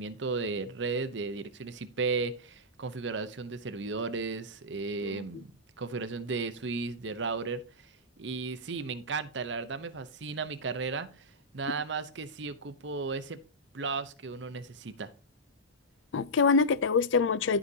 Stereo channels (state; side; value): normal; both; correlation -0.12